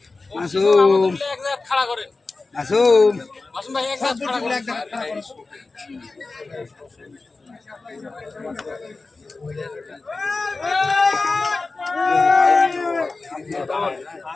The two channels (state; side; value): quieter; right; 3.7 dB